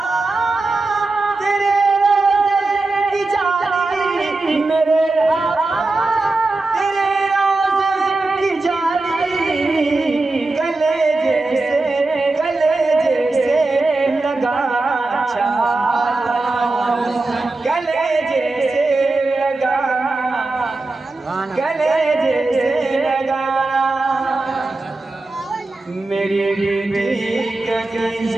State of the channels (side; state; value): left; quieter; 3.2 dB